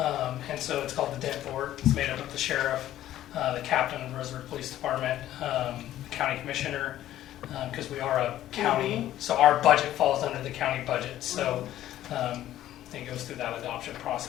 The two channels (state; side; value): quieter; right; 13.1 dB